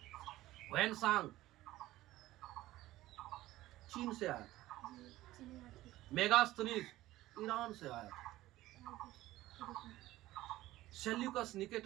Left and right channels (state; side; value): quieter; left; 16.2 dB